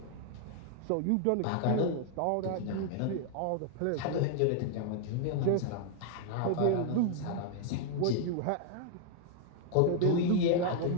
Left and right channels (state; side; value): different; both; correlation 0.00